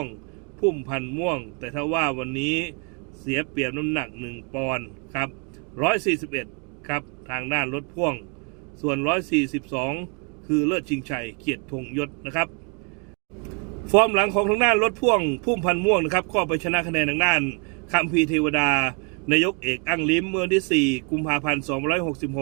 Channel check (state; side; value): quieter; left; 36.0 dB